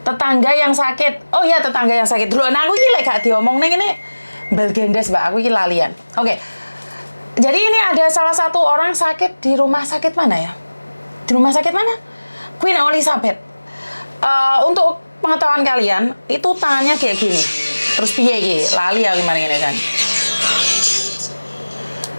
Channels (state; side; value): inverted; both; correlation -1.00